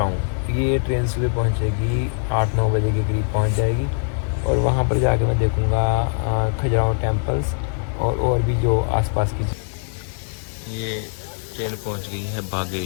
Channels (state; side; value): silent; right; digital silence